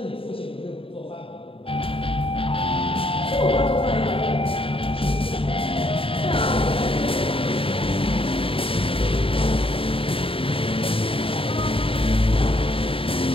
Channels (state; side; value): late; right; 0.26 ms